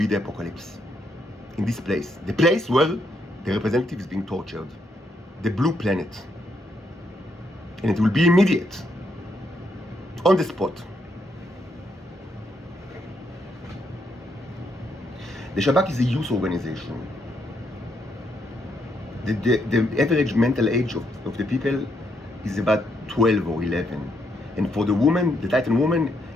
the apocalypse. In this place. The place where the representative is being tortured. The blue planet. And it will be immediate. On the spot. The Shabak is a youth organization. The average mental age of the people is about 12 or 11. And for the woman, the Titan woman,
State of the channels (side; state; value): both; normal; correlation 0.77